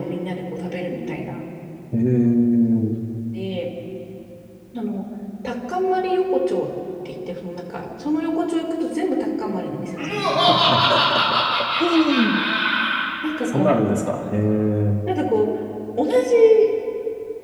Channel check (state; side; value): identical; both; correlation 1.00